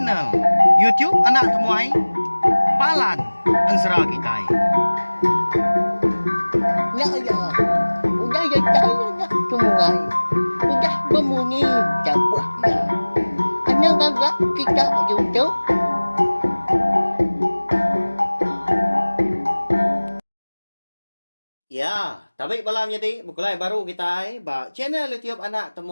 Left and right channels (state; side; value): inverted; both; correlation -1.00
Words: YouTube anak temuai Palan Ansra kita. Ya ya, udah ya saya nak sungai, udah berbunyi cabut ya. Anak agak kita YouTube. Ya, tapi malam jadi bukulai baru kita ba channel YouTube anak